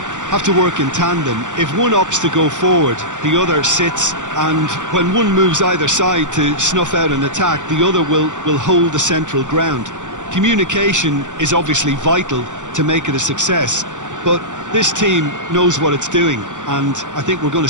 have to work in tandem. If one opts to go forward, the other sits, and when one moves either side to snuff out an attack, the other will hold the central ground. Communication is obviously vital to make it a success, but this team knows what it's doing, and I think we're going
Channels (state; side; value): late; left; 0.86 ms